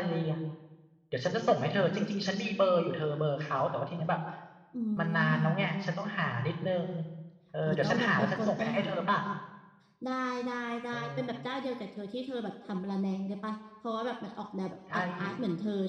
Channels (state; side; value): identical; both; correlation 1.00